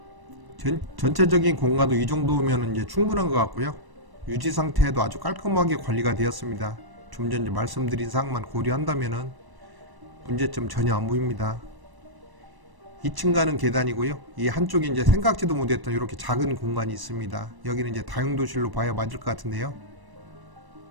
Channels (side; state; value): left; late; 1.1 ms